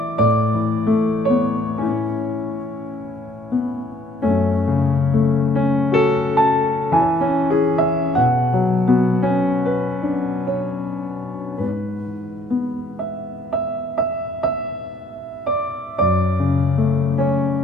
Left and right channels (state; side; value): normal; both; correlation 0.64